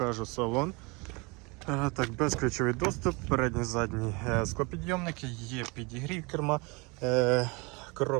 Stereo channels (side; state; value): left; quieter; 28.1 dB